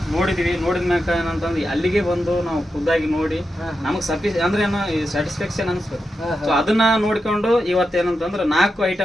ನೋಡಿದ್ವಿ. ನೋಡಿದ ಮ್ಯಾಕ ಏನಂತಂದ್ರೆ ಅಲ್ಲಿಗೆ ಬಂದು ನಾವು ಖುದ್ದಾಗಿ ನೋಡಿ ನಮಗೆ ಅಂದ್ರೆ ಏನೋ ಸ್ಯಾಟಿಸ್ಫ್ಯಾಕ್ಷನ್ ಅನಿಸ್ಬೇಕು. ಸೊ ಅದನ್ನ ನೋಡ್ಕೊಂಡು ಇವತ್ತೇನಂತಂದ್ರೆ 4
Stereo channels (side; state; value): both; normal; correlation 0.88